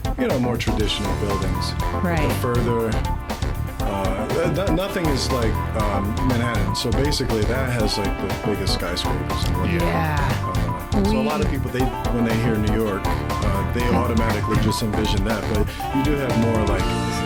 more traditional buildings. Right. But further, nothing is like Manhattan. So basically that has like the biggest skyscrapers. So a lot of people, when they hear New York, they automatically just envision that. But you do have more like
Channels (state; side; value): identical; both; correlation 1.00